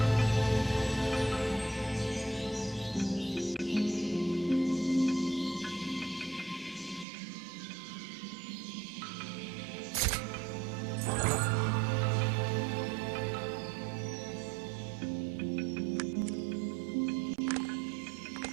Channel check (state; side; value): drops out; left; at 7.1 s